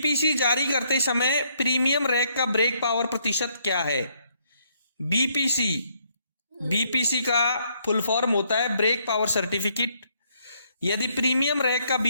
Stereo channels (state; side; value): inverted; both; correlation -0.71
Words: जारी करते समय प्रीमियम रैक का ब्रेक पावर प्रतिशत क्या है? बीपीसी का फुल फॉर्म होता है ब्रेक पावर सर्टिफिकेट। यदि प्रीमियम रैक का